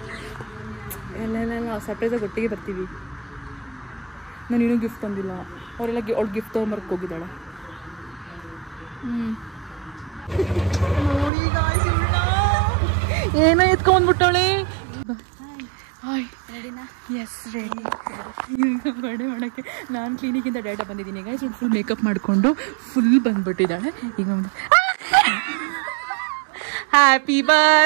ಎಲ್ಲ ಸರ್ಪ್ರೈಸಾಗಿ ಒಟ್ಟಿಗೆ ಬರ್ತೀವಿ. ನಾನು ಇನ್ನೂ ಗಿಫ್ಟ್ ತಂದಿಲ್ಲ, ಅವರೆಲ್ಲ ಅವ್ಳು ಗಿಫ್ಟ್ ತೊಗೊಂಬರ್ಕ್ ಹೋಗಿದ್ದಾಳೆ. ಏನೋ ಎತ್ಕೊಂಡ್ಬಿಟ್ಟವಳೆ. Yes ready. ಈಗ ಬರ್ಡೇ ಮಾಡೋಕ್ಕೆ ನಾನು ಕ್ಲಿನಿಕಿಂದ ಡೇಟಾ ಬಂದಿದ್ದೀನಿ. ಈಗ ಫುಲ್ ಮೇಕಪ್ ಮಾಡಿಕೊಂಡು ಫುಲ್ ಬಂದ್ಬಿಟ್ಟಿದ್ದಾಳೆ. ಈಗ ಒಂದು happy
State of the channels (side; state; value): left; drops out; at 11.3 s